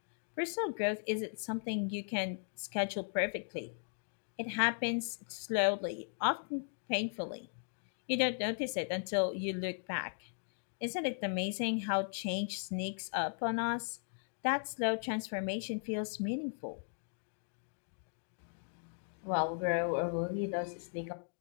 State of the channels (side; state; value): right; silent; digital silence